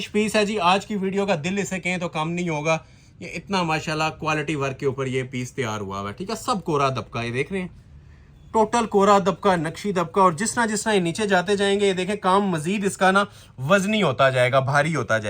पीस है जी। आज की वीडियो का दिल इसे कहें तो कम नहीं होगा। ये इतना माशाल्लाह क्वालिटी वर्क के ऊपर ये पीस तैयार हुआ है, ठीक है। सब कोरा दबका, ये देख रहे हैं, टोटल कोरा दबका, नक्शी दबका। और जिस तरह ये नीचे जाते जाएंगे, ये देखें काम मजीद इसका ना वजनी होता जाएगा, भारी होता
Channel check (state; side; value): identical; both; correlation 1.00